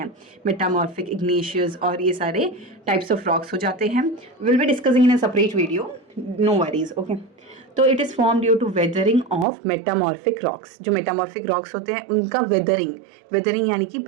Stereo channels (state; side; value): drops out; left; at 9.5 s